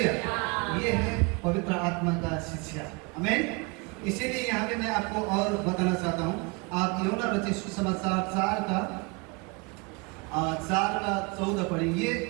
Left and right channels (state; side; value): quieter; left; 29.3 dB